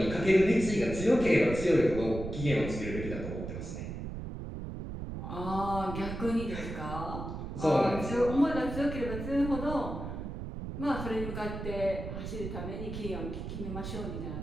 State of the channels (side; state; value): right; noise; rumble, 7 dB below the sound